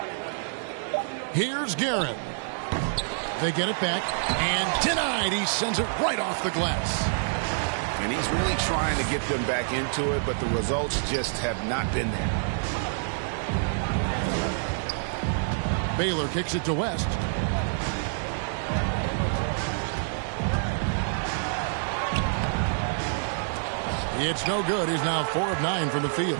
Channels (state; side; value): silent; left; digital silence